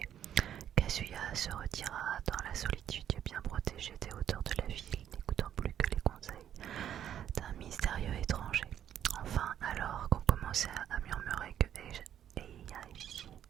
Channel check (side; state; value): left; quieter; 10.2 dB